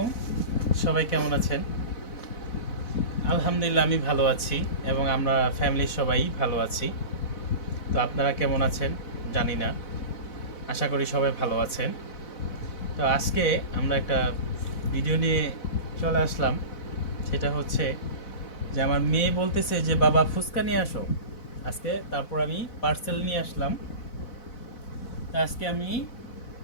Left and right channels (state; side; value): late; right; 4.0 ms